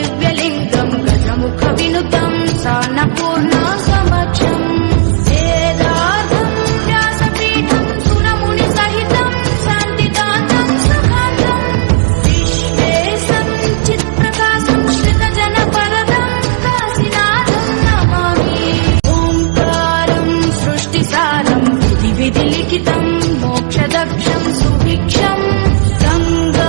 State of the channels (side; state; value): left; silent; digital silence